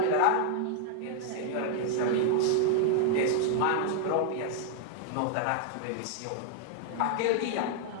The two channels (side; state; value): both; different; correlation 0.00